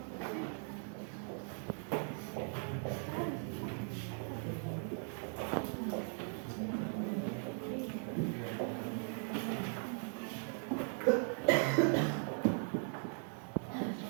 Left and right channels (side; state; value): left; silent; 52 dB below the other